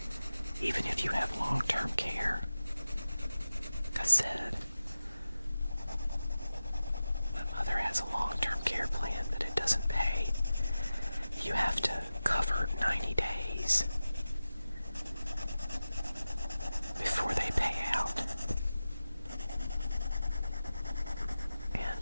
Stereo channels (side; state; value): both; inverted; correlation -0.94